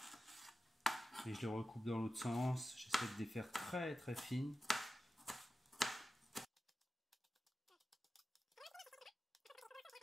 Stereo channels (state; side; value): normal; both; correlation 0.93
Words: Et je les recoupe dans l'autre sens. J'essaie de les faire très très fines.